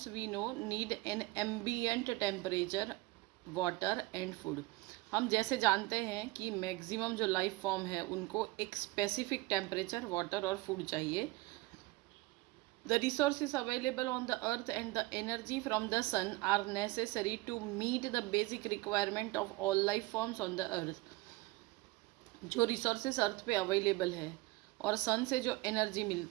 we know need an ambient temperature, water and food. हम जैसे जानते हैं कि मैक्सिमम जो लाइफ फॉर्म है उनको एक स्पेसिफिक टेम्परेचर, वाटर और फूड चाहिए. The resources available on the earth and the energy from the sun are necessary to meet the basic requirement of all life forms on the earth. जो resources अर्थ पे available है और सन से जो energy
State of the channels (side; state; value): left; quieter; 21.6 dB